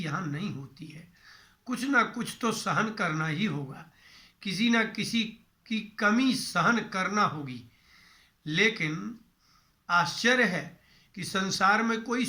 नहीं होती है। कुछ ना कुछ तो सहन करना ही होगा, किसी ना किसी की कमी सहन करना होगी। लेकिन आश्चर्य है कि संसार में कोई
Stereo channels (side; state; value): both; identical; correlation 1.00